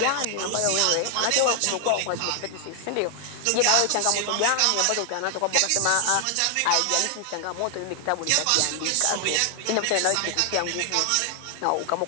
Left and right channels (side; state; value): both; different; correlation 0.00